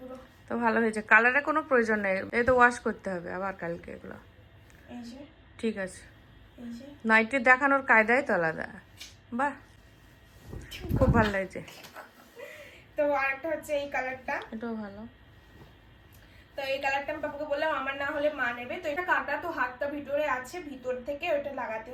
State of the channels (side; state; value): both; identical; correlation 1.00